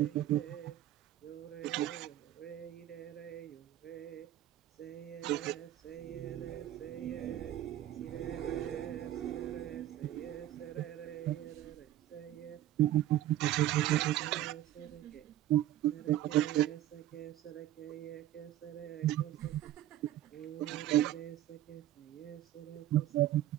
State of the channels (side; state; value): left; quieter; 13.2 dB